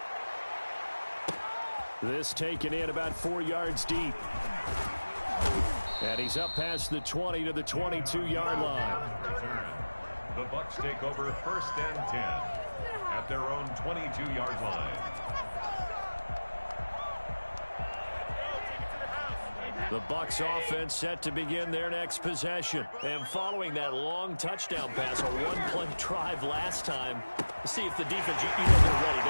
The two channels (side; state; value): both; inverted; correlation -1.00